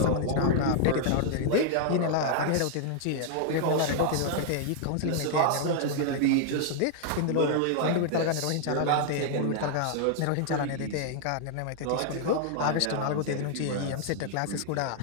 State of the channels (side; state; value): both; different; correlation -0.01